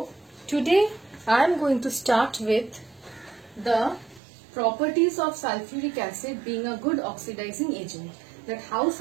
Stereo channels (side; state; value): left; drops out; at 4.2 s